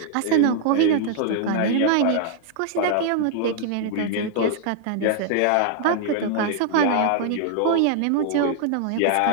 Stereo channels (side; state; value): both; different; correlation 0.00